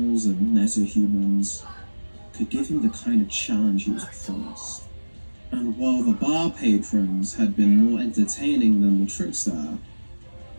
and meta-humans could give him the kind of challenge he was promised. And while the bar patrons had been more entertaining than the trickster,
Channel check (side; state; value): both; inverted; correlation -1.00